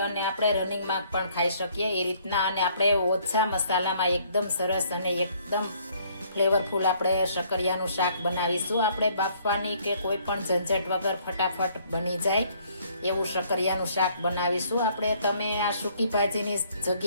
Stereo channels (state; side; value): inverted; both; correlation -0.63